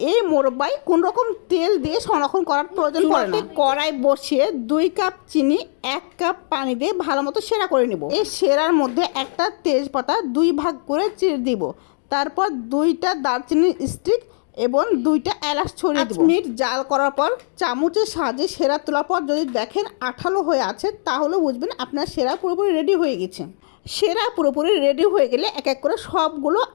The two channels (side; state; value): right; silent; digital silence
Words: এই মোরব্বায় কোন রকম তেল দিয়ে সংরক্ষণ করার প্রয়োজন পড়ে না। কড়াই বসিয়ে 2 কাপ চিনি 1 কাপ পানি দিয়ে ভালো মতো সেরা করে নেব। এই সেরার মধ্যে একটা তেজপাতা 2 ভাগ করে চিড়ে দিব। তারপর 2টা দারচিনির স্টিক এবং 2টা এলাচ ছড়িয়ে দেব। 5 মিনিট জাল করার পর চামচের সাহায্যে সেরা তোলার পর যদি দেখেন আঠালো হয়ে আছে, তাহলে বুঝবেন আপনার সেরা পুরোপুরি রেডি হয়ে গেছে। সেরা পুরোপুরি রেডি হয়ে গেলে এক এক করে সবগুলো